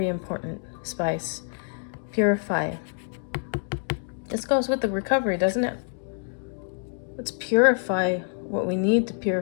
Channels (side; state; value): right; silent; 60 dB below the other